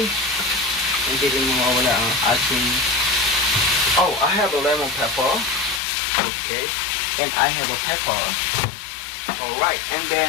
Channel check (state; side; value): drops out; right; at 5.8 s